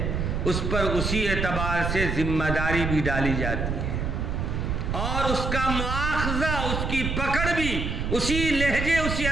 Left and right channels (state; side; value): noise; right; rumble, 1 dB below the sound